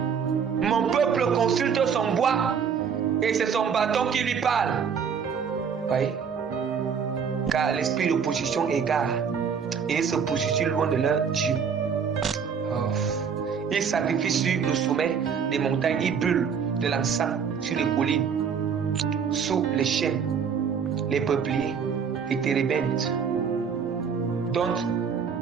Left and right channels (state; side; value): quieter; left; 6.7 dB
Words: Mon peuple consulte son bois et c'est son bâton qui lui parle. Voyez? Car l'esprit de position égare et ils se positionnent loin de leur Dieu. Oh. Ils sacrifient sur le sommet des montagnes, ils brûlent de l'encens sur les collines, sous les chênes, les peupliers, les térébintes, dont